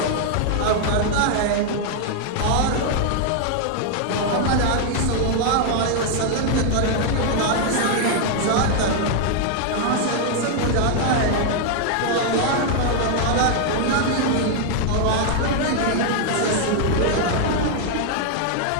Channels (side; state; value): both; different; correlation 0.00